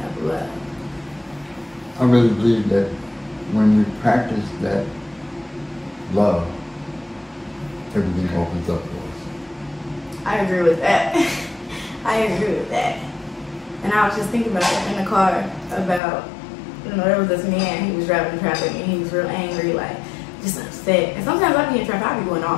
of love? I really believe that when we practice that love, everything opens up for us. I agree with that. I agree with that. And I was just thinking about that in the car about, there was this man, he was driving in traffic and he was real angry, like, just upset. And sometimes I be in traffic, I be going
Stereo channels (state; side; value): drops out; right; at 16.0 s